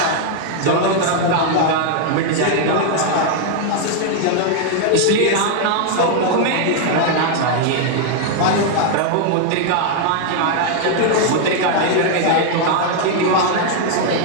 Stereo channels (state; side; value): different; both; correlation 0.00